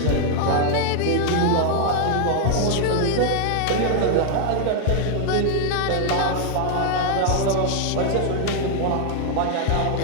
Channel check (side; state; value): both; different; correlation 0.00